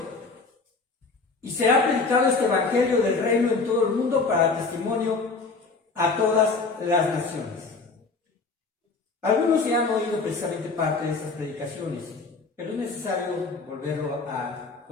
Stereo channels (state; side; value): quieter; right; 4.1 dB